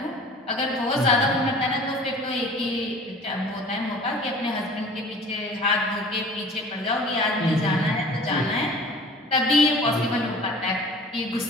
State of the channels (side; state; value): both; normal; correlation 0.45